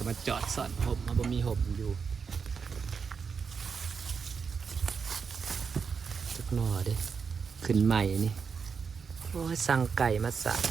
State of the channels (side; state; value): left; quieter; 5.8 dB